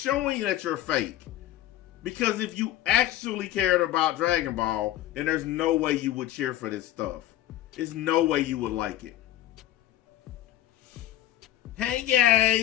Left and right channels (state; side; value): quieter; right; 13.4 dB